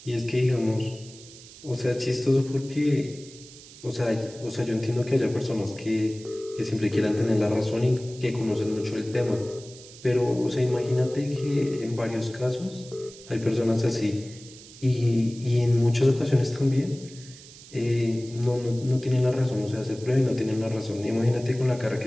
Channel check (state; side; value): noise; right; hiss, 19 dB below the sound